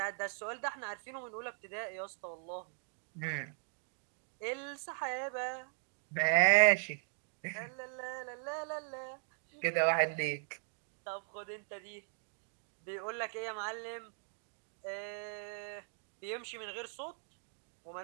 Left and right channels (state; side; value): silent; left; 52 dB below the other